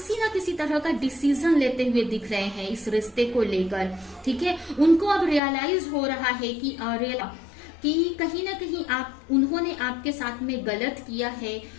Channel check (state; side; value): drops out; right; at 5.4 s